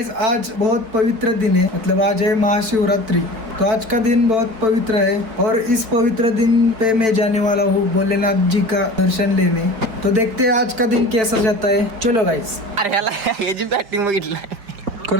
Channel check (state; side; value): late; left; 4.8 ms